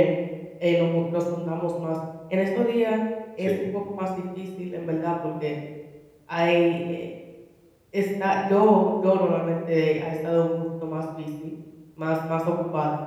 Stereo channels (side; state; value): both; identical; correlation 1.00